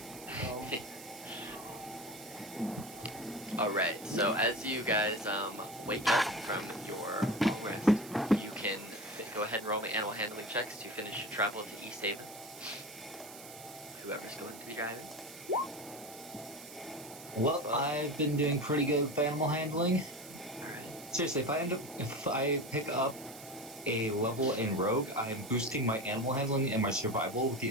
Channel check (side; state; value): right; noise; hiss, 15 dB below the sound